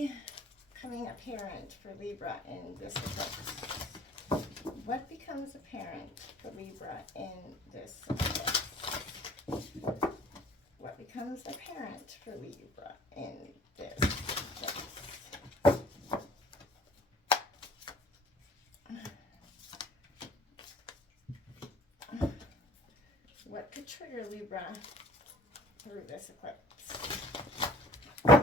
coming apparent for Libra in this eclipse? What becomes apparent for Libra in this eclipse? What becomes apparent for Libra in this eclipse? What could trigger Libra through this eclipse?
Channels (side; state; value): both; normal; correlation 0.50